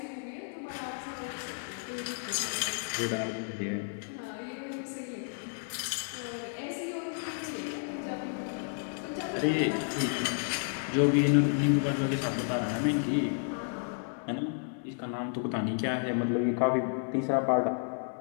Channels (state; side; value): silent; right; 57 dB below the other